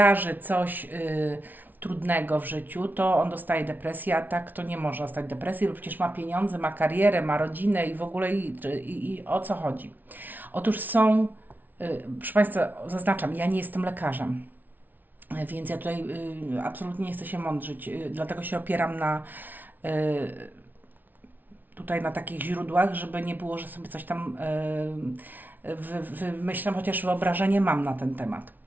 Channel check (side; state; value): left; late; 0.084 ms